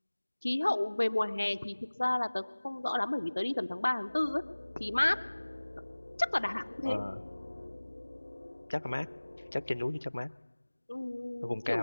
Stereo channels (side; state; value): both; inverted; correlation -1.00